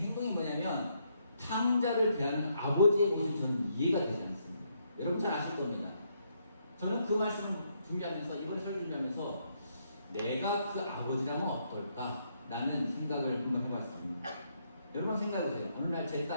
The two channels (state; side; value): inverted; both; correlation -0.75